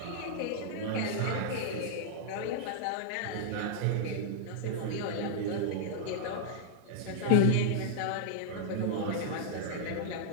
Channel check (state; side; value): different; both; correlation -0.01